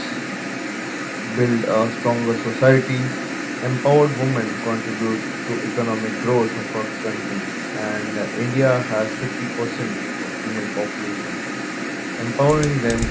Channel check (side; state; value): both; identical; correlation 1.00